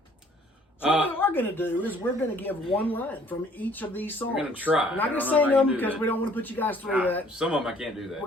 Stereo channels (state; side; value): normal; both; correlation 0.58